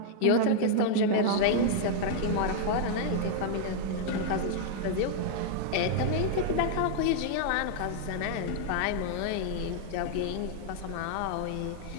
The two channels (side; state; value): both; different; correlation -0.01